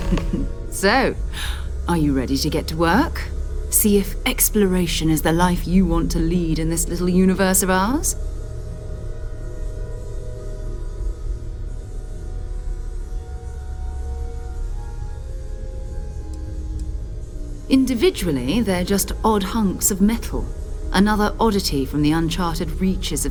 So, are you ready to get to work? See if exploration is the life you want to lead in this little universe of ours? Individually, they're just odd hunks of metal. Another oddity from the uncharted reaches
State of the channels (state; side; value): identical; both; correlation 1.00